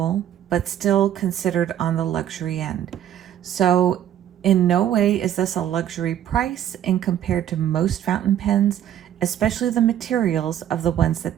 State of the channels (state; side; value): quieter; left; 10.7 dB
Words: but still considered on the luxury end. So in no way is this a luxury price in compared to most fountain pens, especially the materials of the ones